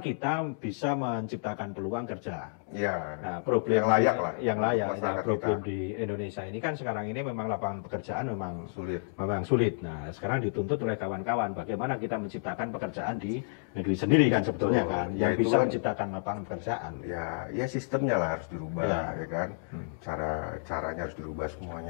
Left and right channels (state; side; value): silent; right; digital silence